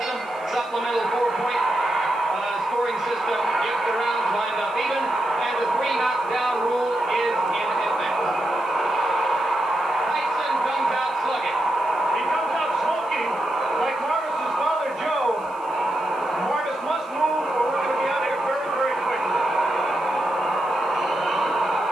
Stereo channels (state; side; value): noise; right; hiss, 29 dB below the sound